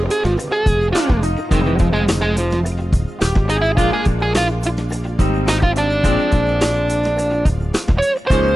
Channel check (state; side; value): normal; both; correlation 0.95